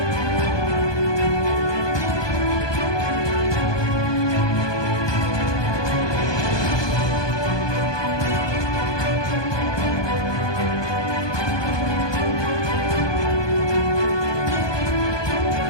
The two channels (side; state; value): right; late; 1.2 ms